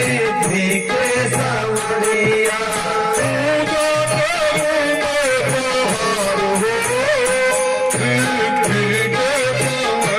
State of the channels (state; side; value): identical; both; correlation 1.00